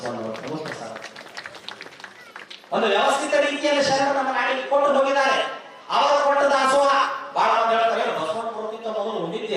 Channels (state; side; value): identical; both; correlation 1.00